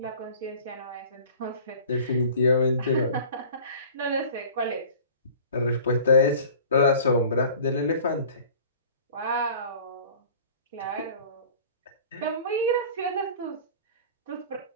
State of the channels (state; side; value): inverted; both; correlation -0.44